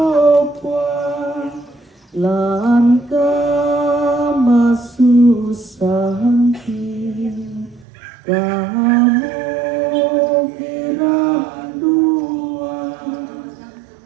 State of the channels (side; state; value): left; drops out; at 7.9 s